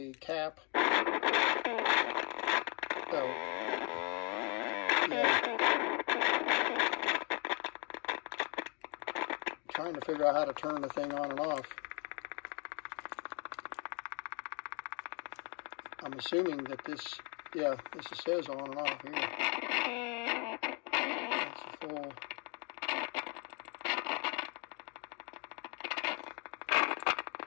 cap. Oh, yeah. Trying to figure out how to turn the thing on and off. I'm assuming that this, yeah, this says on and off here. It's a full.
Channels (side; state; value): right; quieter; 33.6 dB